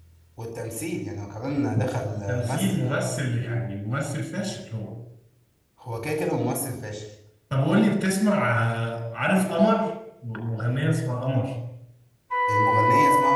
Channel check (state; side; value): identical; both; correlation 1.00